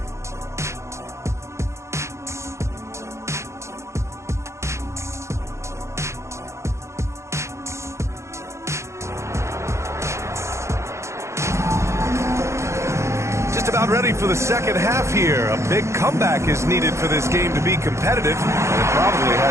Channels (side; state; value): left; late; 0.14 ms